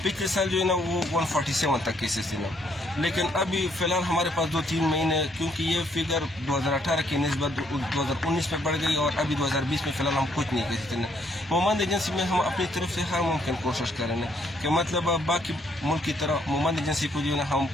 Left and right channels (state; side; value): normal; both; correlation 0.69